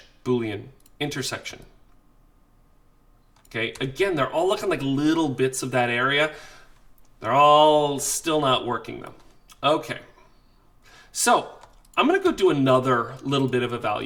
Boolean, intersection. Okay, again, they're all looking like little bits of that area. They're all still not working though. Okay, so I'm gonna go do another little bit of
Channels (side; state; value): both; identical; correlation 1.00